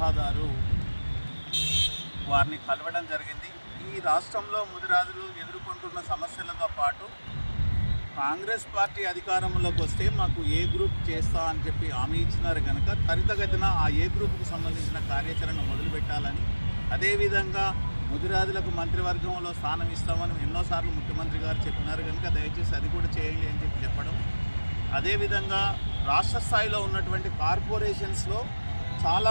వారిని కలవడం జరిగింది. ఈ రాష్ట్రంలో ముదిరాజులు ఎదుర్కొంటున్న సమస్యలతో పాటు కాంగ్రెస్ పార్టీ అధికారంలోకి వస్తే మాకు ఏ గ్రూప్ చేస్తా అని చెప్పి హామీ ఇచ్చినారు కనుక త్వరితగతిన ఆ ఏ గ్రూప్కు సంబంధించిన కార్యాచరణ మొదలుపెట్టాలని, అదేవిధంగా ముదిరాజులకు మంత్రివర్గంలో స్థానం ఇస్తామని ఎన్నోసార్లు ముఖ్యమంత్రి గారు చెప్పినారు కనుక దయచేసి అది కూడా చేయండి అని చెప్పి చెప్పడం, అదేవిధంగా రాష్ట్ర స్థాయిలో ఉన్నటువంటి కార్పొరేషన్స్లో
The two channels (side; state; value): both; inverted; correlation -1.00